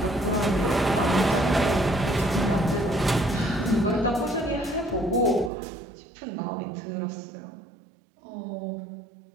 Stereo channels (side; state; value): left; drops out; at 5.5 s